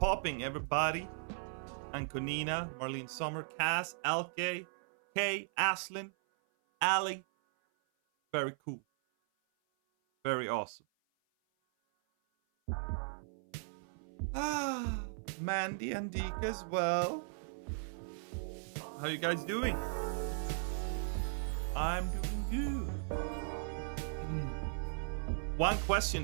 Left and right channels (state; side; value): silent; left; 53 dB below the other